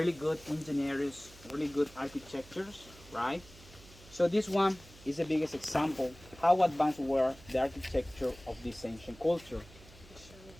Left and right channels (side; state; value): right; noise; hum, 21 dB below the sound